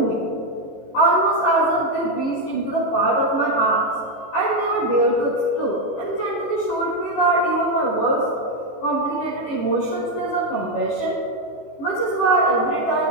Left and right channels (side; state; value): right; late; 18 ms